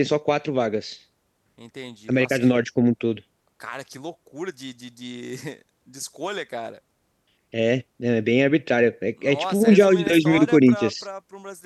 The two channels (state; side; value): identical; both; correlation 1.00